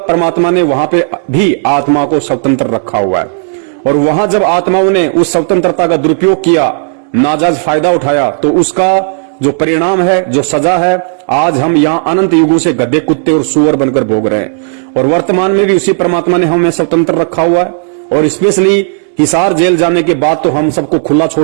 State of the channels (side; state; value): left; silent; digital silence